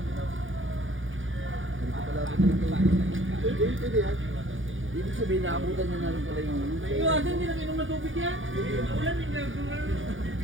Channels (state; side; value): late; left; 0.57 ms